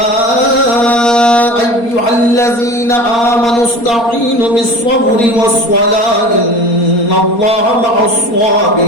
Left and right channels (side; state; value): right; late; 4.3 ms